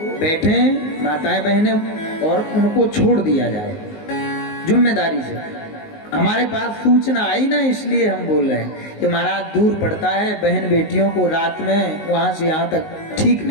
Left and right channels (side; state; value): right; late; 19 ms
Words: बैठे, माताएं बहनें, और उनको छोड़ दिया जाए जिम्मेदारी से। हमारे पास सूचना आई ना, इसलिए हम बोल रहे हैं कि महाराज दूर पड़ता है, बहन बेटियों को रात में वहां से यहाँ तक ठीक